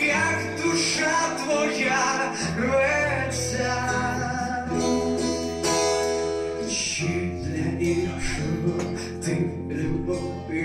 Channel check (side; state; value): both; identical; correlation 1.00